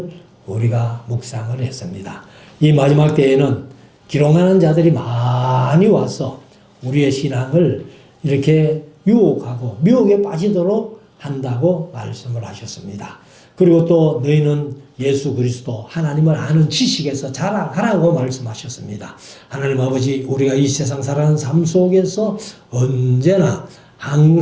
우리가 묵상을 했습니다. 이 마지막 때에는 기롱하는 자들이 많이 와서 우리의 신앙을 이렇게 유혹하고 미혹에 빠지도록 한다고 말씀을 하셨습니다. 그리고 또 너희는 예수 그리스도 하나님을 아는 지식에서 자라가라고 말씀하셨습니다. 하나님 아버지, 우리가 이 세상 살아가는 삶 속에서 언제나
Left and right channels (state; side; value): identical; both; correlation 1.00